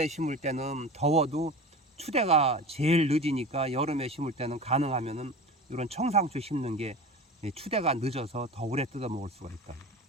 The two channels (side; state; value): both; normal; correlation 0.33